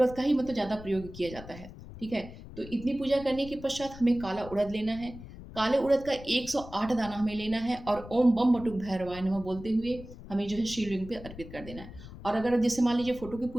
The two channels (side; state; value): left; noise; rumble, 15 dB below the sound